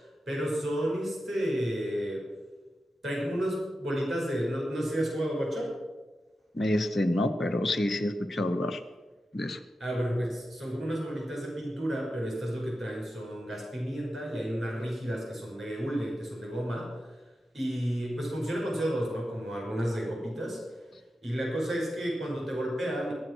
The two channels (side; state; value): both; normal; correlation 0.90